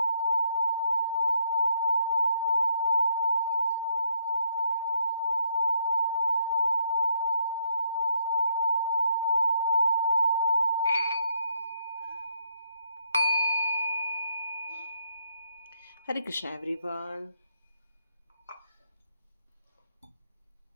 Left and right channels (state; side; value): inverted; both; correlation -0.72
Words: हरे कृष्णा एवरीवन।